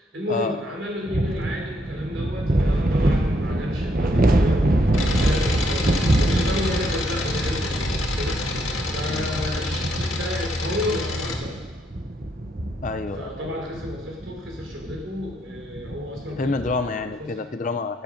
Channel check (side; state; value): both; normal; correlation 0.74